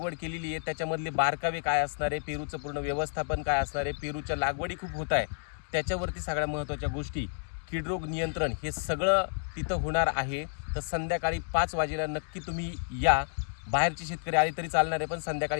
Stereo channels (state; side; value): silent; right; digital silence